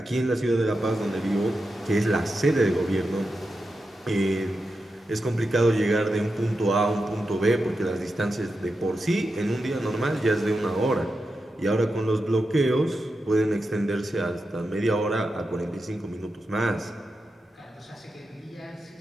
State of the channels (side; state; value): both; normal; correlation 0.89